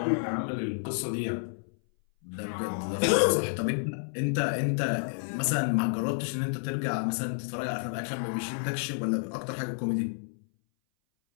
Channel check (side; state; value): right; silent; 58 dB below the other